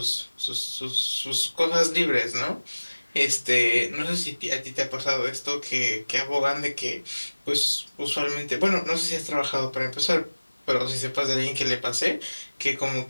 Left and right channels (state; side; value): inverted; both; correlation -1.00